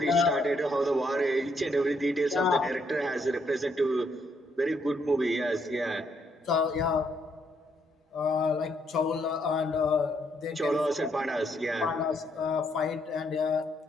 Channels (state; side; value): normal; both; correlation 0.74